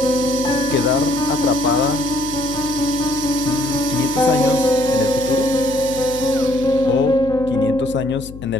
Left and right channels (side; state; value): left; noise; hum, 14 dB below the sound